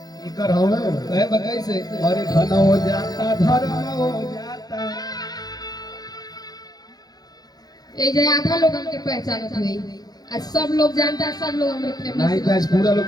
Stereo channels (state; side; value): late; right; 0.19 ms